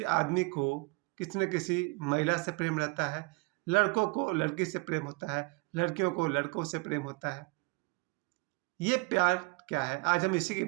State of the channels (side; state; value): left; quieter; 28.0 dB